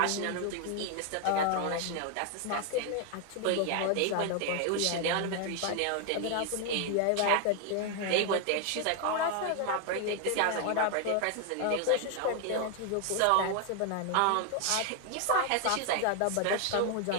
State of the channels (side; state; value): both; different; correlation 0.00